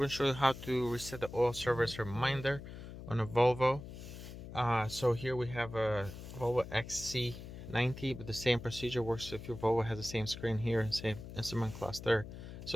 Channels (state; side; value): noise; left; hum, 12 dB below the sound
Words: to show you how to reset the oil service reminder on a Volvo. So here we have a Volvo XC90, but the same procedure works if your Volvo has the same screen here and same instrument cluster.